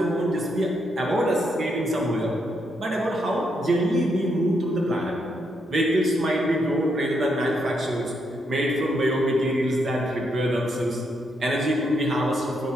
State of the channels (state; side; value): normal; both; correlation 0.78